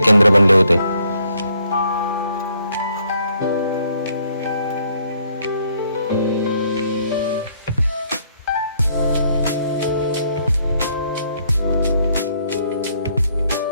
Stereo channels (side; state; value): both; inverted; correlation -0.68